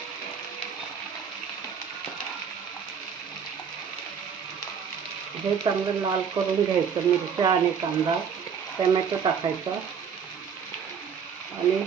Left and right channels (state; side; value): quieter; left; 6.9 dB